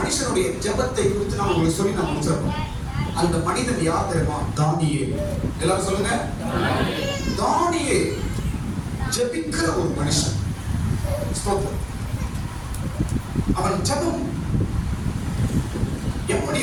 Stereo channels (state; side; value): identical; both; correlation 1.00